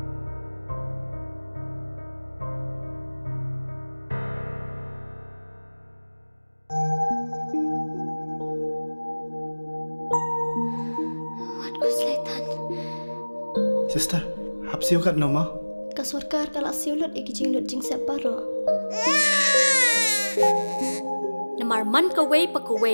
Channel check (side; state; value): both; inverted; correlation -1.00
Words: Sister, hap siu kat nama? Kasurkar kalau siulut iki jing separo. Namar man khwe pa